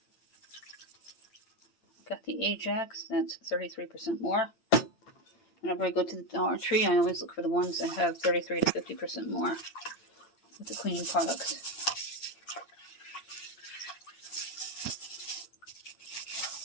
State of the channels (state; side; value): late; right; 8.8 ms